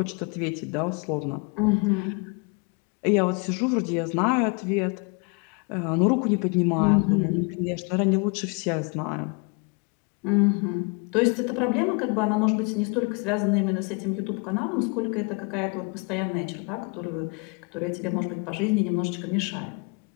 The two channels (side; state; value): right; quieter; 32.6 dB